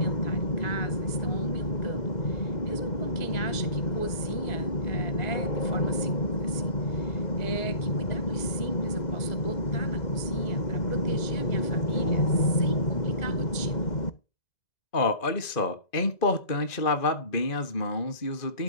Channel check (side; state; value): right; late; 2.0 ms